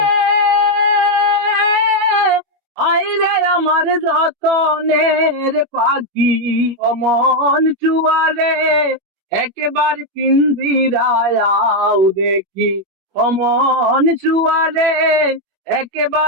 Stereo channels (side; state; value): left; late; 21 ms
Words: আইরে আমার যতনের পাখি অমন চুয়ারে একেবার পিঞ্জিরায়াও দেখি অমন চুয়ারে